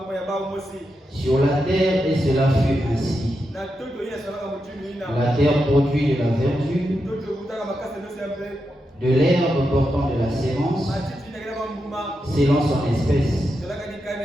Sur la terre, et cela fut ainsi. La terre produit de la verdure, de l'herbe portant de la sémence, selon son espèce,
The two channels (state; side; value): normal; both; correlation 0.86